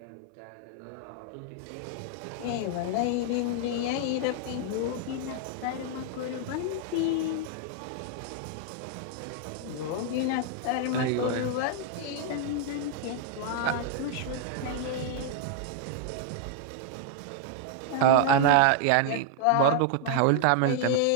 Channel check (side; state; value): both; different; correlation 0.00